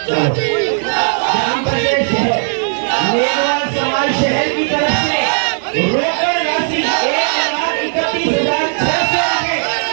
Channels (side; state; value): left; silent; 61 dB below the other